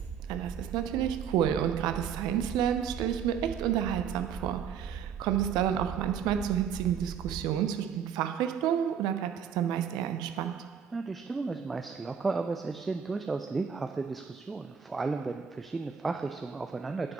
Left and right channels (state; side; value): quieter; left; 7.7 dB